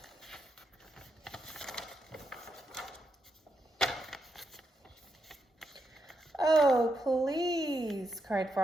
Oh, please, cried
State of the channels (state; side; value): normal; both; correlation 0.83